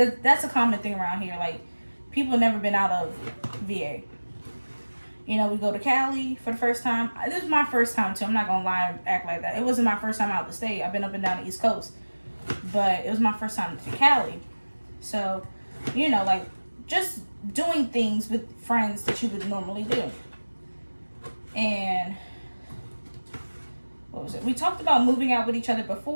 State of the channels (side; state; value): both; inverted; correlation -1.00